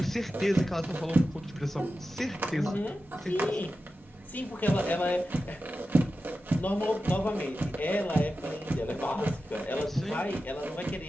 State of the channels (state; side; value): normal; both; correlation 0.92